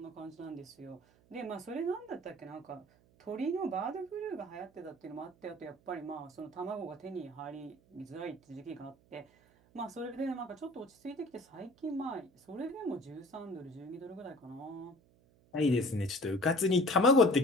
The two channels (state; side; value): noise; right; hum, 30 dB below the sound